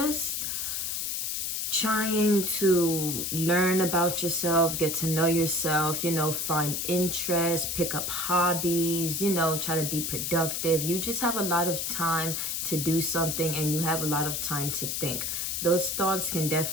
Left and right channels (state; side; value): noise; left; hiss, 2 dB below the sound